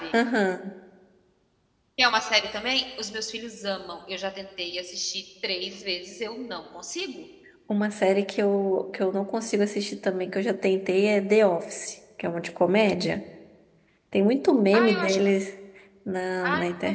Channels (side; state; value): both; identical; correlation 1.00